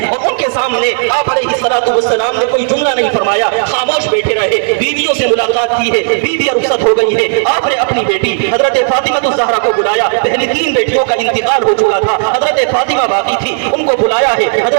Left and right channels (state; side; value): silent; left; digital silence